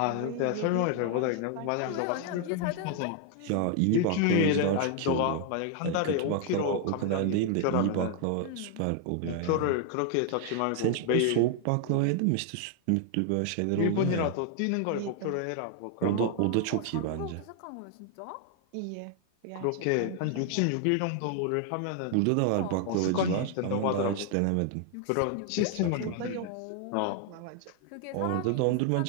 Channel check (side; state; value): both; different; correlation 0.00